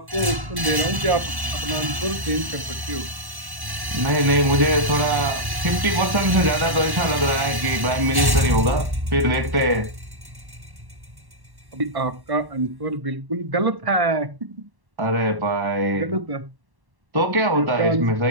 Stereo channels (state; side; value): late; left; 1.1 ms